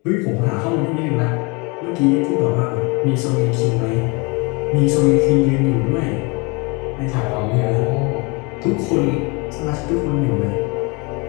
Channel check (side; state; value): right; quieter; 29.2 dB